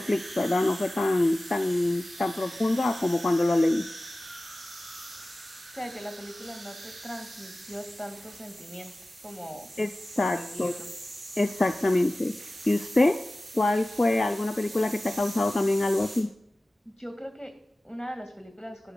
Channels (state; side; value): normal; both; correlation 0.97